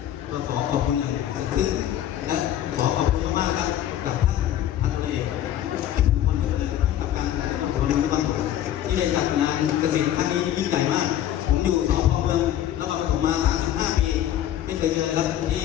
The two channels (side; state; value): right; quieter; 11.7 dB